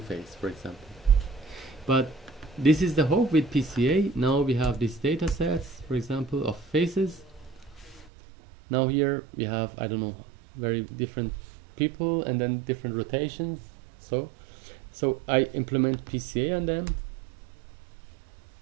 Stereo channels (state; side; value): drops out; left; at 8.1 s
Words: face, for example. But this is the hope with PCA. Now we have these data sets, for example, of faces. Now here we have, I don't know, very different people and then different rotations. So I implement PCA on them.